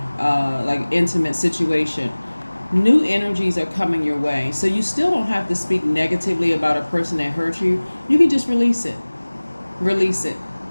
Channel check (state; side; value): inverted; both; correlation -1.00